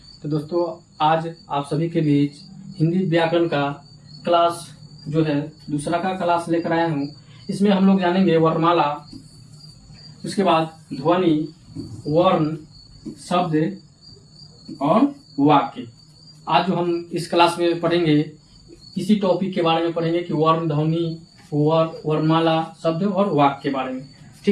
तो दोस्तों, आज आप सभी के बीच हिंदी व्याकरण का क्लास जो है दूसरा का क्लास लेकर आया हूं। इसमें हम लोग जानेंगे वर्णमाला, उसके बाद ध्वनि, वर्ण, शब्द और वाक्य। आज जो हम इस क्लास में पढ़ेंगे इसी टॉपिक के बारे में पढ़ेंगे कि वर्ण, ध्वनि, वर्णमाला, शब्द और वाक्य के बारे में।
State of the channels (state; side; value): identical; both; correlation 1.00